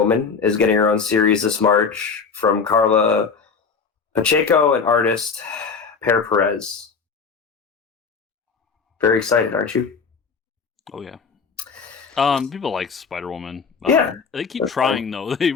is getting her own series this March from Carla Pacheco and artist Per Perez. Very excited, aren't you? Oh, yeah. People like Spider-Woman. Yeah. They keep trying, though. They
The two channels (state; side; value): quieter; right; 5.4 dB